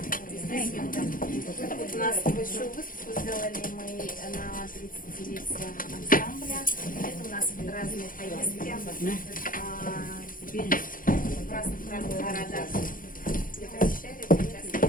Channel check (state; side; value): late; right; 0.40 ms